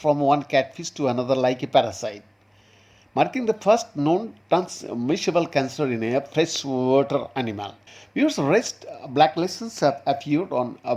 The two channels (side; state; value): both; identical; correlation 1.00